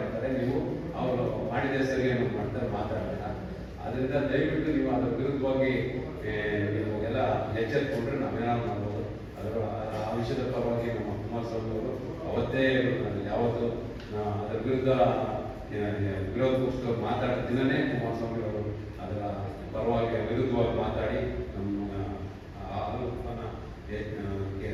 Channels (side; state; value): both; identical; correlation 1.00